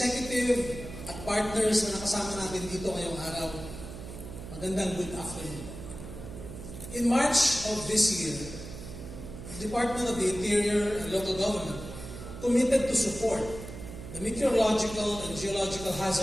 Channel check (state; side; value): noise; right; hum, 11 dB below the sound